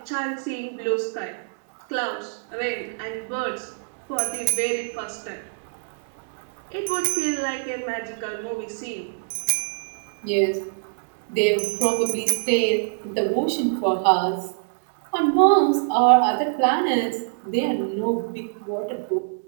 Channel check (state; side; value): silent; left; 62 dB below the other